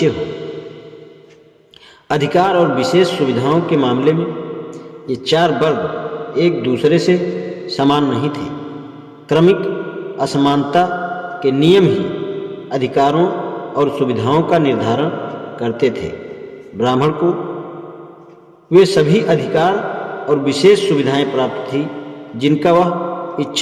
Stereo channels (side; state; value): both; identical; correlation 1.00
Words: हो। अधिकार और विशेष सुविधाओं के मामले में ये 4 वर्ग एक दूसरे से समान नहीं थे। क्रमिक असमानता के नियम ही अधिकारों और सुविधाओं का निर्धारण करते थे। ब्राह्मण को वे सभी अधिकार और विशेष सुविधाएं प्राप्त थी जिनका वह